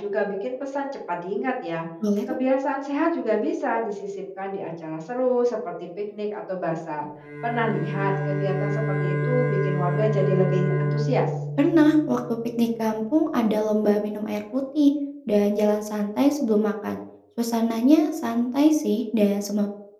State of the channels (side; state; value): both; identical; correlation 1.00